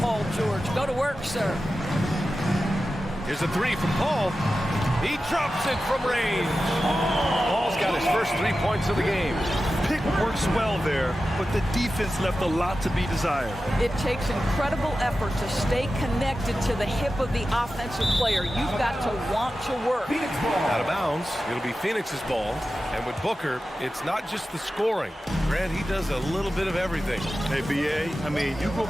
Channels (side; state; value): both; normal; correlation 0.93